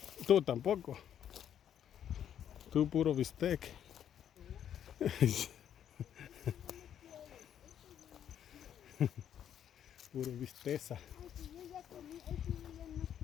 Tú tampoco. Tú puro bistec. Puro bisteza. Ay, si yo ya comí, ese yo ya no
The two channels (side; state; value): right; quieter; 9.7 dB